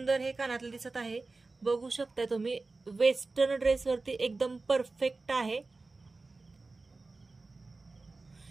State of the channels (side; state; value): left; quieter; 3.6 dB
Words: हे कानातलं दिसत आहे. बघू शकता तुम्ही वेस्टर्न ड्रेसवरती एकदम परफेक्ट आहे.